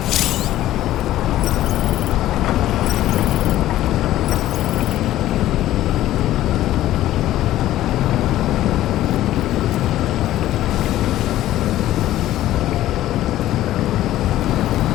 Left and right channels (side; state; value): right; quieter; 14.1 dB